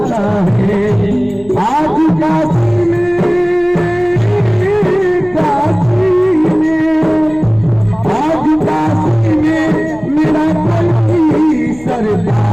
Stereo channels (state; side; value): noise; left; hum, 23 dB below the sound